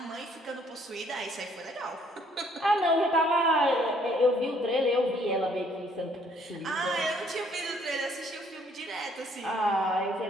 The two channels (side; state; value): both; normal; correlation 0.64